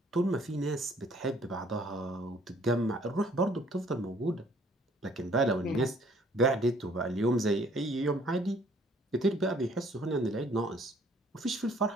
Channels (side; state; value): both; normal; correlation 0.60